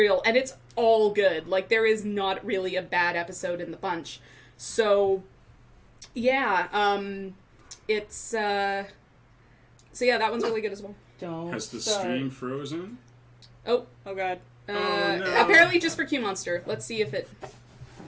and it's all good. Like, there is not really a bad episode in the bunch. So yeah, it's so yeah, that one's really good as well. Has the stream frozen? Oh god. No. Apparently just for Q Monster. Let's see if it...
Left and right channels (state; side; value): identical; both; correlation 1.00